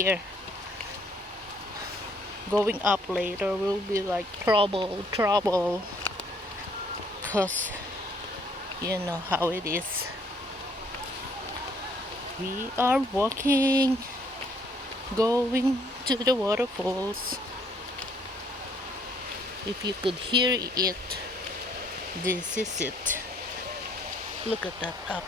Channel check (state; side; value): normal; both; correlation 0.65